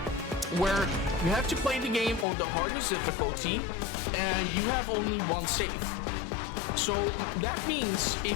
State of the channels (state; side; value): drops out; right; at 2.2 s